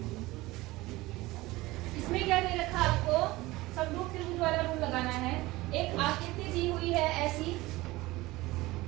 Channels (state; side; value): quieter; left; 19.6 dB